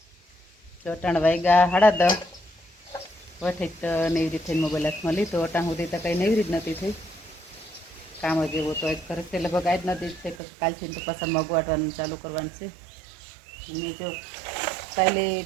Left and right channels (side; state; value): left; drops out; at 10.4 s